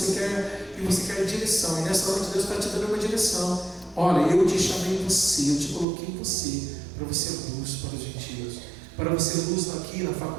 quer direção. E nessa noite Deus está te dando uma direção. Olha, eu te chamei você, eu te coloquei em você, para você ser luz para os gentios, para você ser luz aqui na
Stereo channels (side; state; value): left; drops out; at 5.9 s